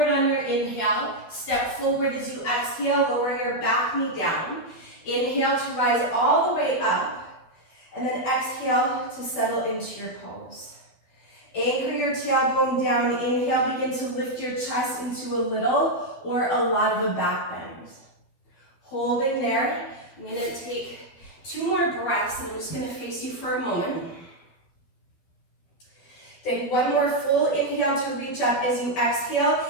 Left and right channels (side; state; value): right; late; 12 ms